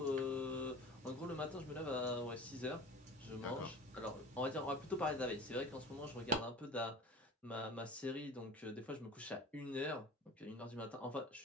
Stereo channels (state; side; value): normal; both; correlation 0.39